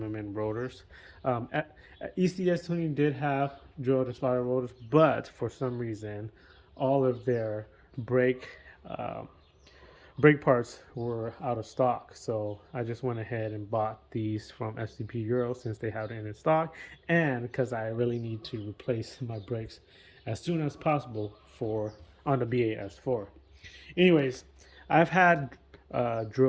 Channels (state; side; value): identical; both; correlation 1.00